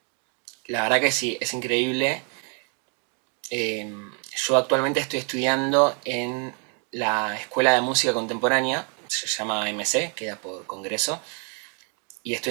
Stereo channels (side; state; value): left; quieter; 38.4 dB